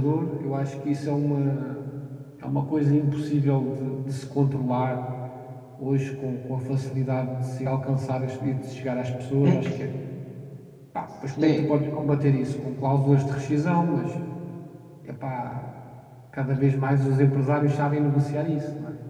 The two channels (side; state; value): both; identical; correlation 1.00